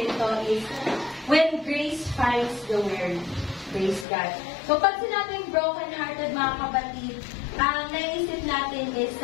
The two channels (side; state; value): right; drops out; at 4.0 s